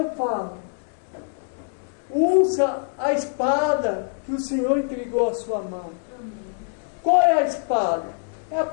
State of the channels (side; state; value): right; silent; digital silence